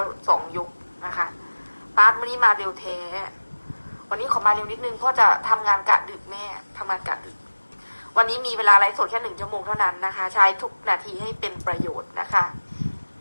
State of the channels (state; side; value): inverted; both; correlation -1.00